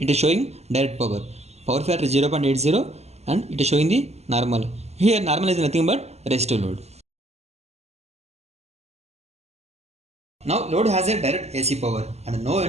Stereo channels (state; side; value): late; left; 0.31 ms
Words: it is showing direct power. Power factor 0.80 and it is showing the normal. Here normal is nothing but resistive load. Now load has a direct AC power and no